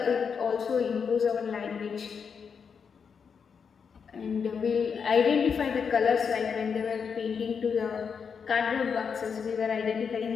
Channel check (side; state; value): right; quieter; 6.3 dB